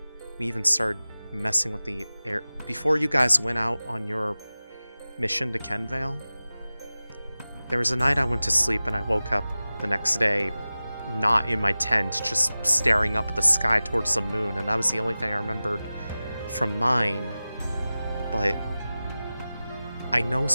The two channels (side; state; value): both; inverted; correlation -0.96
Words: we even started messing with the air... Before you guys went out on your mission to Kenvale, there was a night I went to sleep and I woke up the next day not in my tent, just staring up at the sky towards the moon, and that was the only thing I remembered from mine. But I know